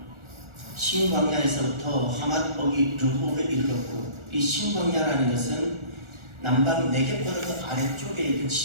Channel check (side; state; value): left; late; 1.4 ms